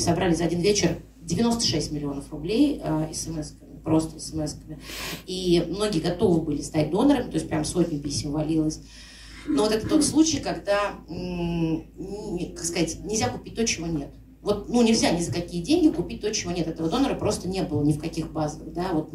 за один вечер 96 миллионов рублей смс-ками, просто смс-ками. И многие готовы были стать донорами, то есть прям сотни писем валилось. Но вот это тот случай, когда, как сказать, нельзя купить то, чего нет. Вот, ну, нельзя ни за какие деньги купить то, чего нет. Этого донора просто не было ни в каких базах, да, вот,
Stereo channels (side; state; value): both; identical; correlation 1.00